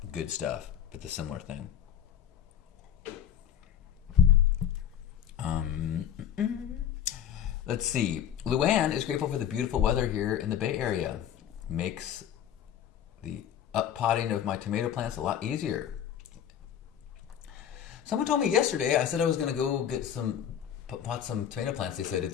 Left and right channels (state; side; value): quieter; right; 9.5 dB